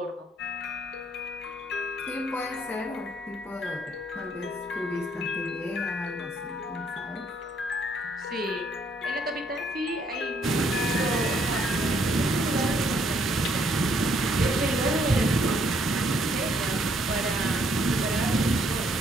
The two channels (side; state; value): both; normal; correlation 0.68